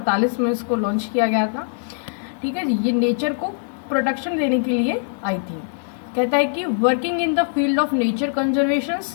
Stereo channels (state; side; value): silent; right; digital silence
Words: में इसको लॉन्च किया गया था. ठीक है जी, ये नेचर को प्रोटेक्शन देने के लिए आई थी. कहता है कि working in the field of nature conservation